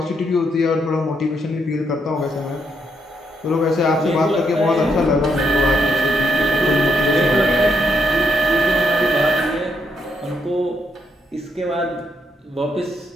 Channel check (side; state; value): both; normal; correlation 0.76